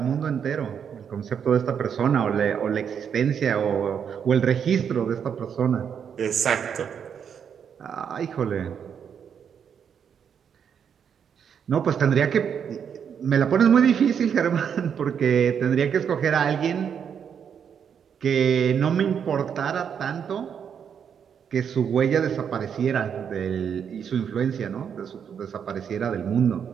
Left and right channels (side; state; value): left; quieter; 7.7 dB